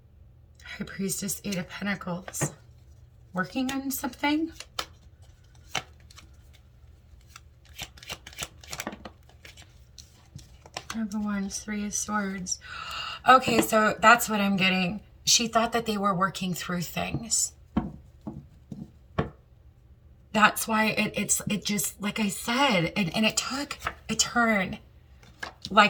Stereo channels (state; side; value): identical; both; correlation 1.00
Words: High Priestess, 8 of Pentacles. Working on something? Number 1, 3 of Swords. Okay, so that's what I'm getting. She thought that they were working through things. That's why it just, like I said, and it took a turn.